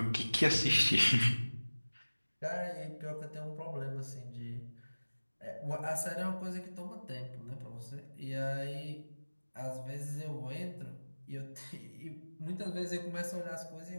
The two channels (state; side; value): inverted; both; correlation -1.00